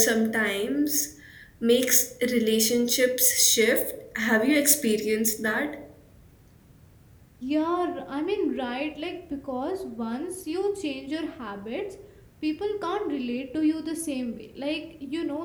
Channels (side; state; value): both; identical; correlation 1.00